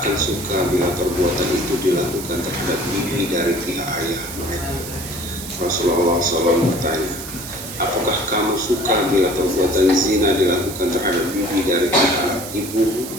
suka bila perbuatan itu dilakukan terhadap bibi dari pihak ayah mereka. Rasulullah SAW bertanya, apakah kamu suka bila perbuatan zina dilakukan terhadap bibi dari pihak ibu?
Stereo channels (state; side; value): noise; right; hiss, 10 dB below the sound